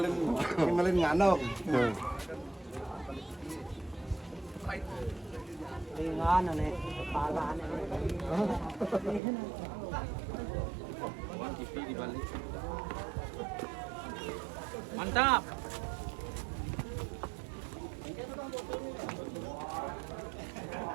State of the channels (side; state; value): left; drops out; at 9.2 s